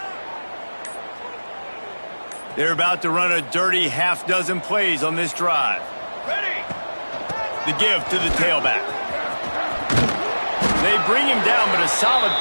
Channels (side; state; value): both; inverted; correlation -1.00